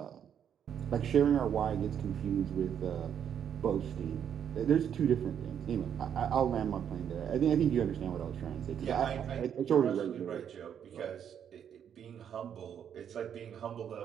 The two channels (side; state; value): left; quieter; 8.6 dB